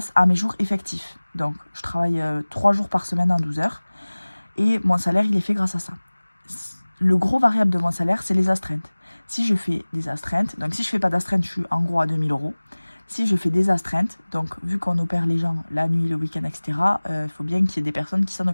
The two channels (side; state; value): both; inverted; correlation -1.00